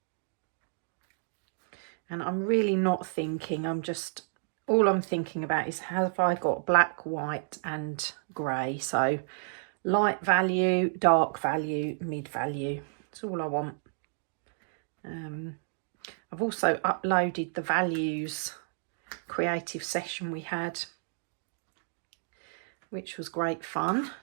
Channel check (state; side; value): silent; left; digital silence